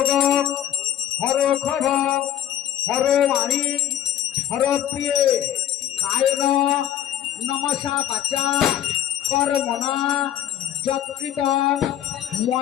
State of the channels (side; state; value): right; quieter; 11.2 dB